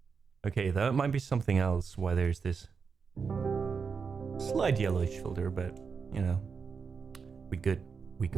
Okay, that might be something else why there's this slight yellowish filter, but you know, we good.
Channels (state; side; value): quieter; left; 5.6 dB